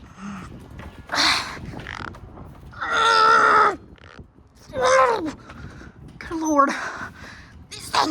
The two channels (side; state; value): both; identical; correlation 1.00